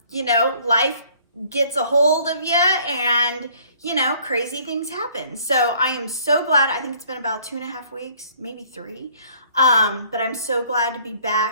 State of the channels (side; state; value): both; inverted; correlation -0.57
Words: You know, life gets a hold of you and, you know, crazy things happen. So I am so glad. I think it's been about 2.5 weeks, maybe 3. But I'm so glad to be